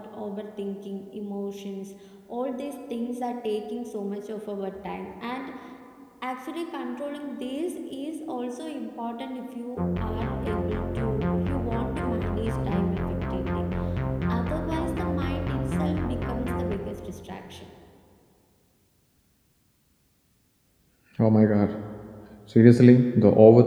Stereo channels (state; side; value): identical; both; correlation 1.00